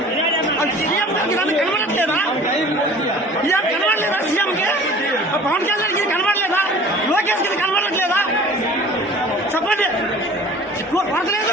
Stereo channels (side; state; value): both; normal; correlation 0.45